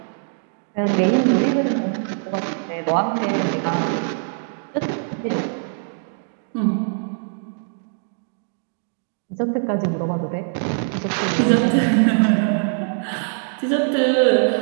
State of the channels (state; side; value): silent; left; digital silence